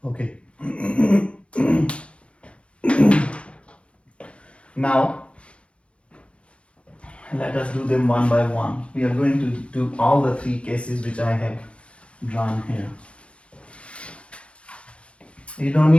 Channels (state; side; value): late; right; 0.060 ms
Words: Okay. Now let us do them one by one. We are going to do all the three cases which I have drawn here. You don't